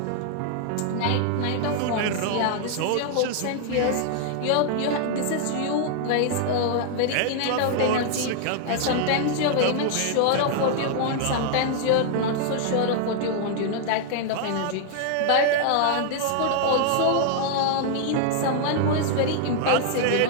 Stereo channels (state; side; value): different; both; correlation 0.00